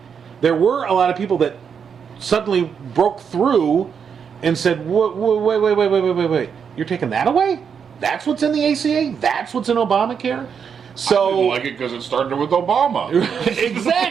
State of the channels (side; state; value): left; quieter; 6.9 dB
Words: there were a lot of people that suddenly broke through and said, wait, you're taking that away? That's what's in the ACA? That's what's in Obamacare? So I didn't like it because it started with Obama.